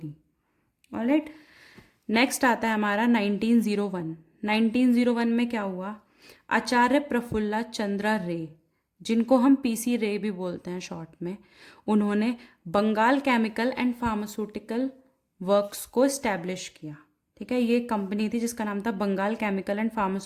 Alright, next आता है हमारा 1901। 1901 में क्या हुआ? आचार्य प्रफुल्ला चंद्रा रे, जिनको हम पीसी रे भी बोलते हैं शॉर्ट में, उन्होंने Bengal Chemical and Pharmaceutical Works को इस्टेब्लिश किया। ठीक है, ये कंपनी थी जिसका नाम था Bengal Chemical and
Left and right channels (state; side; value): identical; both; correlation 1.00